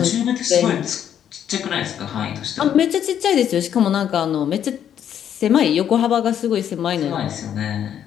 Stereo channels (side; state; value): right; quieter; 9.5 dB